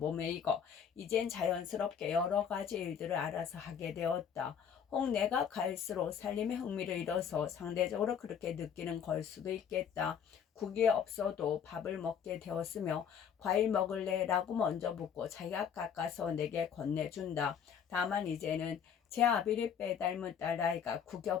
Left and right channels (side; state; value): right; quieter; 7.8 dB